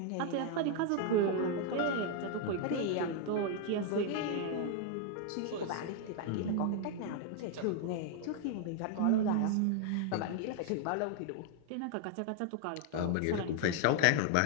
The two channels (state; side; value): different; both; correlation 0.00